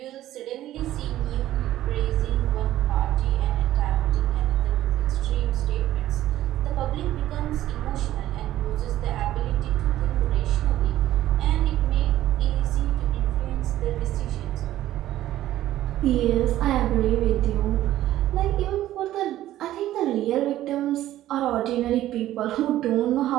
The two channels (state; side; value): quieter; left; 13.8 dB